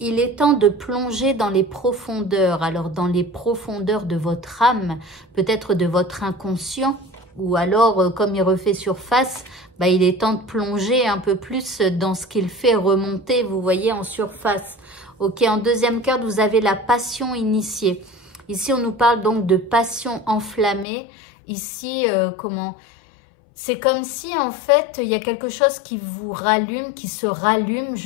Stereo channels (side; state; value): right; drops out; at 20.9 s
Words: il est temps de plonger dans les profondeurs. Alors, dans les profondeurs de votre âme, peut-être de votre inconscient, ou alors, comme il refait surface, bah, il est temps de plonger un peu plus dans ce qu'il fait remonter, vous voyez, en surface. Ok, en deuxième carte, vous avez la passion initiée. Ici, on nous parle donc de passion enflammée. Ici, comment... C'est comme si, en fait, il y a quelque chose qui vous rallume, qui se rallume,